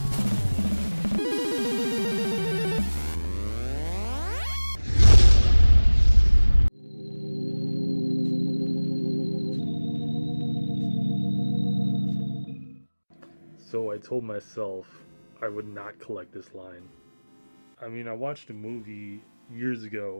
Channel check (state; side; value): inverted; both; correlation -1.00